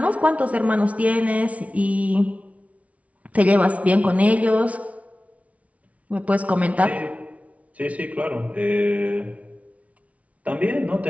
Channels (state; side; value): late; left; 0.066 ms